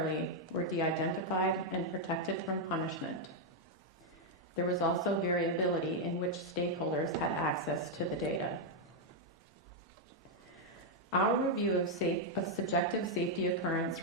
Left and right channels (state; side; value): normal; both; correlation -0.01